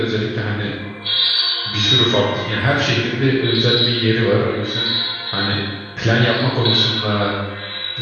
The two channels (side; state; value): both; identical; correlation 1.00